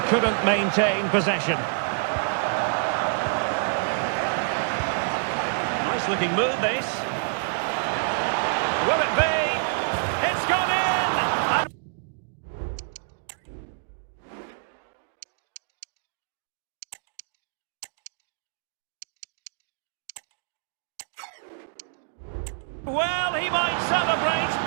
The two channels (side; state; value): left; silent; digital silence